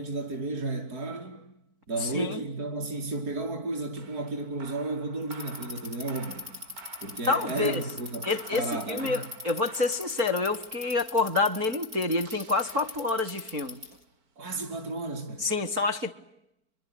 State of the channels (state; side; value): late; left; 4.5 ms